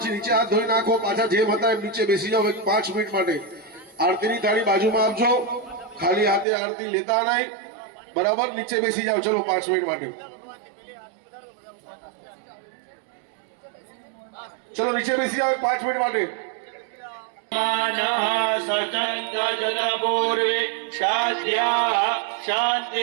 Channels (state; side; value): drops out; left; at 6.5 s